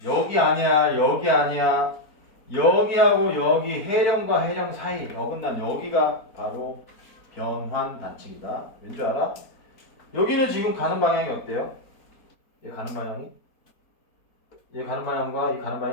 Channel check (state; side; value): late; right; 4.2 ms